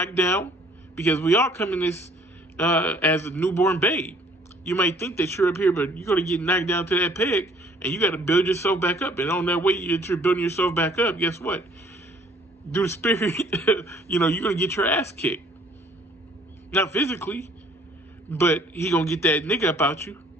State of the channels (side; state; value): both; normal; correlation 0.58